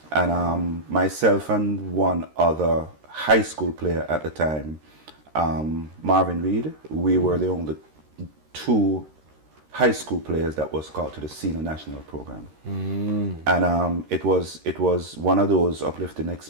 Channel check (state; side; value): late; left; 13 ms